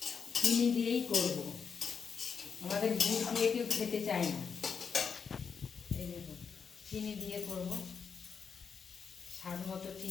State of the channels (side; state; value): right; quieter; 6.1 dB